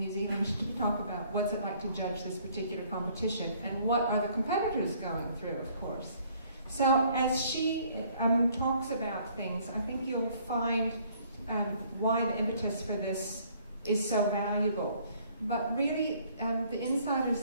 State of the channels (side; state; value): both; inverted; correlation -0.61